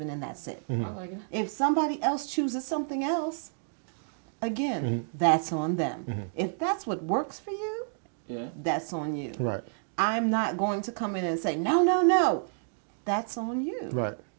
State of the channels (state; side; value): silent; left; digital silence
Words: and that's it. I like it. If somebody else chooses something else, again, that's on them. If that's what works for you, that's on you. Right. I'm not going to come in and say, no. That's on you. Right.